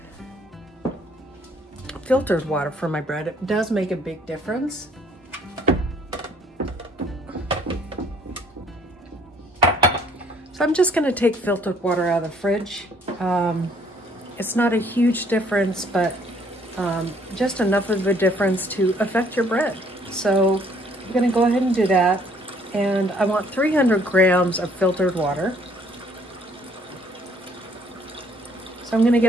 filtered water for my bread. It does make a big difference. So I'm just going to take filtered water out of the fridge. It's not a huge difference, but just enough of a difference to affect your bread. So I'm going to go ahead and do that, and I want 300 grams of filtered water. So I'm going to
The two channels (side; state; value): both; normal; correlation 0.62